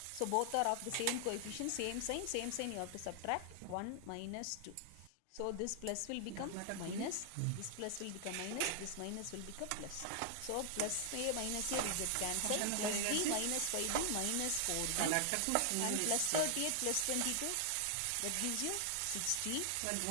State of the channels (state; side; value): different; both; correlation 0.00